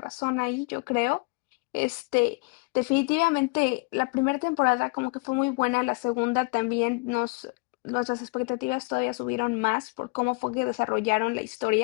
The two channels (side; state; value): right; quieter; 29.9 dB